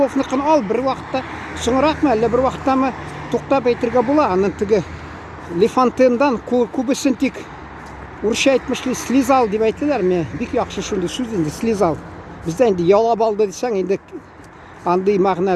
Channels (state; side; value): identical; both; correlation 1.00